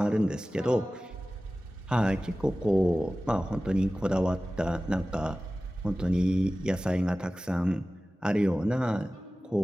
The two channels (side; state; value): both; normal; correlation 0.96